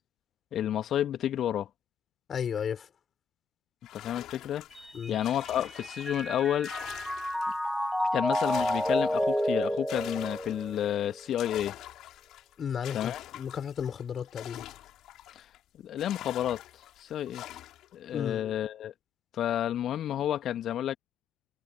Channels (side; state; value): right; quieter; 5.9 dB